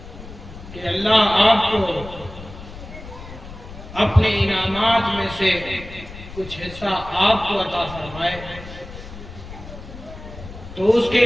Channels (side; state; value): left; noise; rumble, 14 dB below the sound